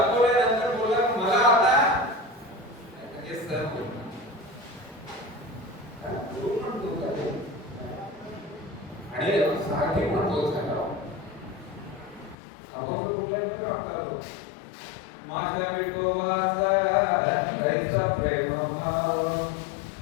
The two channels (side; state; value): right; drops out; at 12.4 s